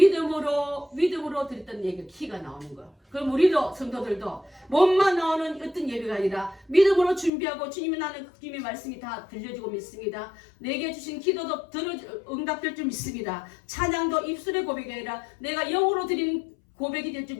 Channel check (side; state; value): right; drops out; at 7.3 s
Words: 드렸던 예배 키가 나오는 거예요. 그럼 우리도 성도들도 몸만 나오는 어떤 예배가 아니라 믿음으로 준비하고 주님이 나는 주님의 말씀이 다 들려지고 믿습니다. 내게 주신 기도도 응답될 줄 믿습니다. 찬양도 입술의 고백이 아니라 내가 영으로 드린 고백이 될 줄